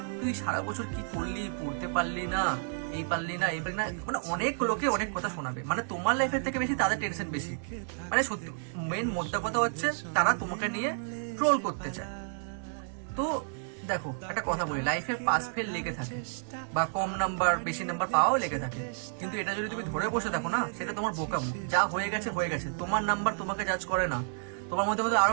তুই সারা বছর কি করলি, পড়তে পারলি না, এই পারলি না, এই পারলি না, মানে অনেক লোকে অনেক কথা শোনাবে। মানে তোমার লাইফের থেকে বেশি তাদের টেনশন বেশি। মানে সত্যি মেন মোদ্দা কথা হচ্ছে তারা তোমাকে নিয়ে ট্রোল করতে চায়। তো দেখো একটা কথা বলি, লাইফে পাস ফেল লেগে থাকে বা কম নাম্বার বেশি নাম্বার পাওয়াও লেগে থাকে, কিন্তু এটা যদি তুমি ধরে বসে থাকো না, সেটা তোমার বোকামো। যা হয়ে গেছে হয়ে গেছে, তোমার নাম্বার তোমাকে জাজ করে না। তোমার মধ্যে মধ্যে আরো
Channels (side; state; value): left; silent; digital silence